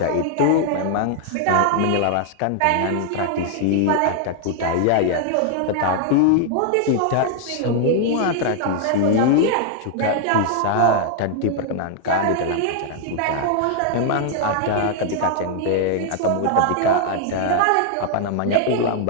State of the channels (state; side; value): different; both; correlation 0.00